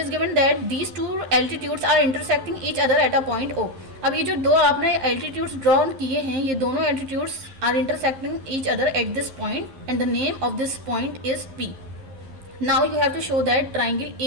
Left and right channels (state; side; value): late; left; 11 ms